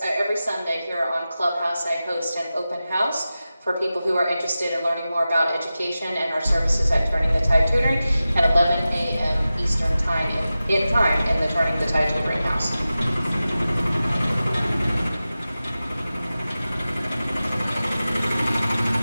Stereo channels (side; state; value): both; inverted; correlation -0.94